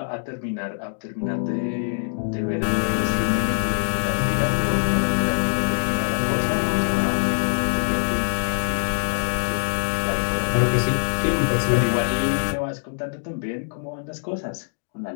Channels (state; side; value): silent; right; digital silence